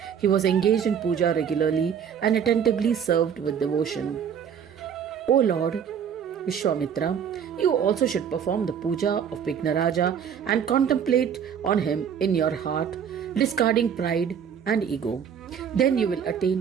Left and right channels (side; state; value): left; quieter; 7.9 dB